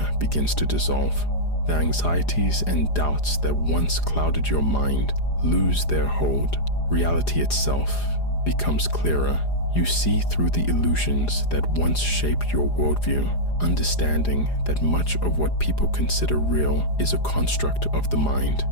begins to dissolve. The anxieties and doubts that once clouded your mind lose their hold. Reality itself becomes clearer. You see through the illusions that once shaped your worldview, understanding that much of what people consider real is a construct of the mind.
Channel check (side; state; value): right; late; 4.9 ms